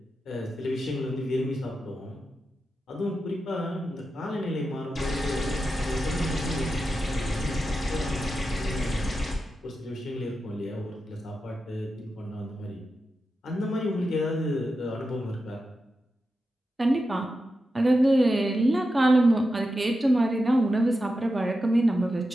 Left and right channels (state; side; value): normal; both; correlation 0.90